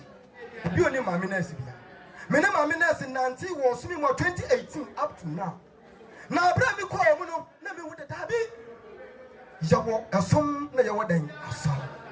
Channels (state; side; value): identical; both; correlation 1.00